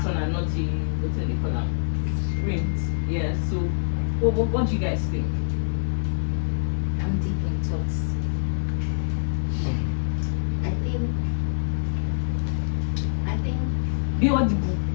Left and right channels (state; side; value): silent; right; 62 dB below the other